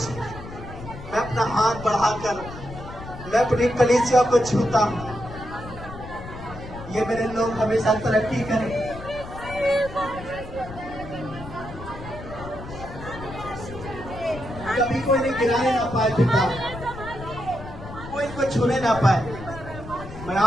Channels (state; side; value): noise; left; rumble, 13 dB below the sound